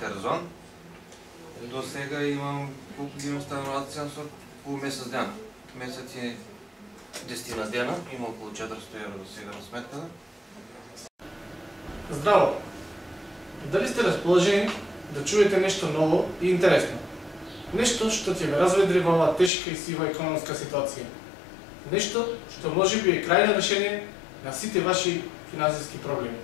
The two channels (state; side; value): drops out; right; at 19.5 s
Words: До сега имам колку ги имам стануваци со по месец ден. Месец е 10 дена, има околу 400 евро до сега на сметката. Здраво! Дали сте расположени да чуете нешто ново и интересно? Нешто што ќе ве разведри во оваа тешка и сива економска ситуација. Нешто што можеби е крајно решение на сите ваши финансиски проблеми.